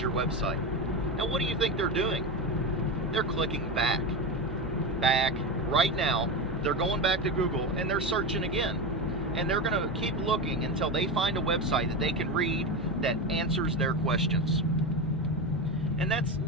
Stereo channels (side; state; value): both; normal; correlation 0.18